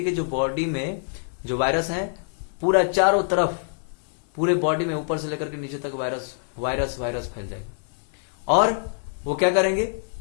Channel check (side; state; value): right; silent; 57 dB below the other